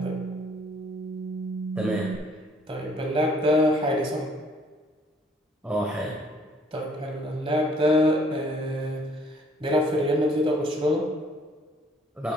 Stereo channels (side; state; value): both; normal; correlation 0.60